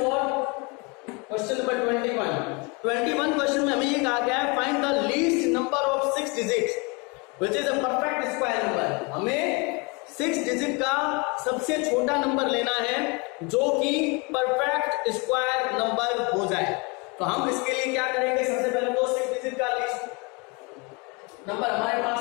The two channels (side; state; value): right; quieter; 29.2 dB